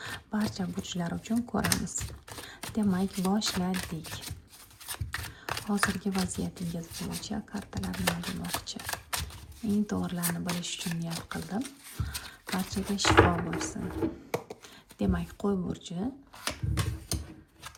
Barcha burchlar uchun ko'ramiz. Demak, boshladik. Hozirgi vaziyatingiz bo'yicha kartalar nima demoqchi? Eng to'g'rilarini bilish uchun niyat qildim. Barchaga shifo bo'lsin. Demak, qo'y burchi,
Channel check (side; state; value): both; identical; correlation 1.00